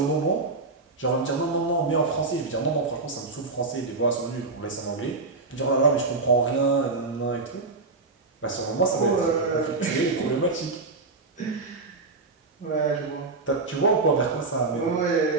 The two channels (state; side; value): quieter; left; 3.6 dB